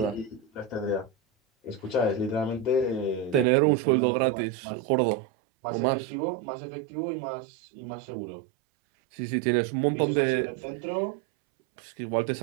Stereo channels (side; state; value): left; drops out; at 3.5 s